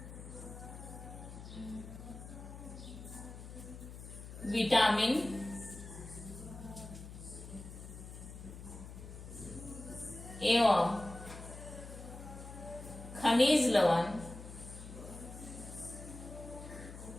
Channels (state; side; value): noise; left; hum, 12 dB below the sound